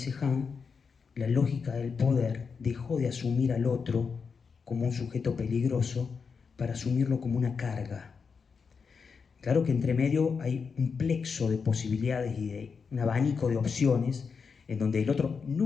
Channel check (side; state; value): right; quieter; 5.6 dB